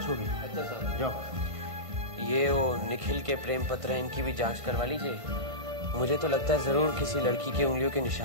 होगी। अच्छा साहब। जाओ। ये वो निखिल के प्रेम पत्र हैं, इनकी भी जांच करवा लीजिए। मुझे तो लगता है जरूर किसी लड़की के उंगलियों के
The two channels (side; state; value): left; late; 1.5 ms